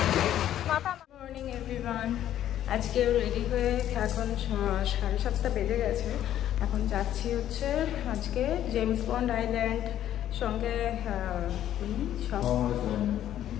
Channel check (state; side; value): quieter; right; 11.6 dB